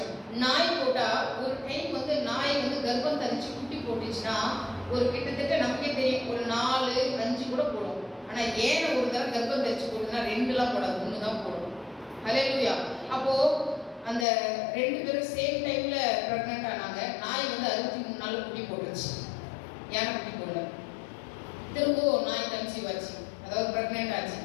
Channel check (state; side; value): drops out; right; at 14.2 s